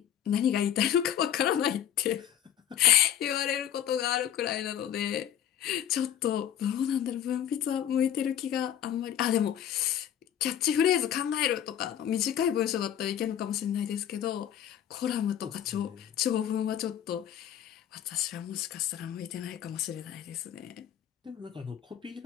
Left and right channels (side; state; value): right; quieter; 10.2 dB